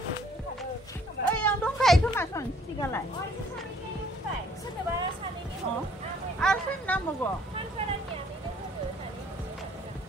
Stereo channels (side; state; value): both; normal; correlation 0.61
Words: ओइ आं दंखायो खोमा सन सिगालाय आरो सोरनि नांबावगौ